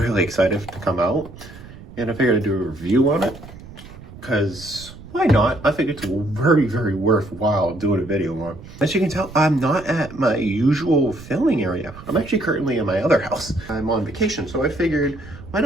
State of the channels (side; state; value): right; noise; rumble, 17 dB below the sound